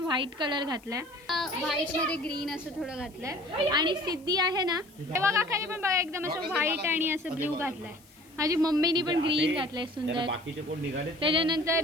कलर घातलाय। व्हाईट मध्ये ग्रीन असं थोडं घातलंय आणि सिद्धी आहे ना तेव्हा काकाने पण बघा एकदम असं व्हाईट आणि असं ब्ल्यू घातलंय। माझी मम्मीनी पण ग्रीन घातलंय सुंदर।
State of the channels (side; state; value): left; noise; hiss, 27 dB below the sound